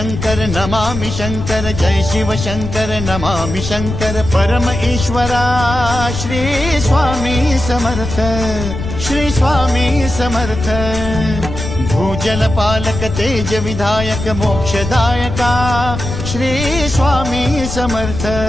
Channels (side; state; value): left; noise; rumble, 6 dB below the sound